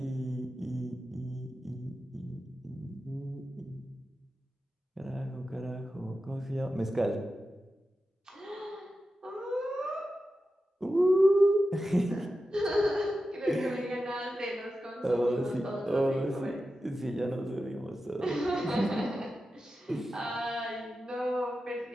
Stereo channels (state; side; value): normal; both; correlation 0.91